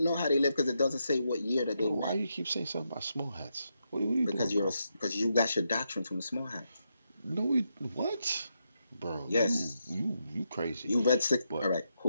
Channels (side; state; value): both; inverted; correlation -0.82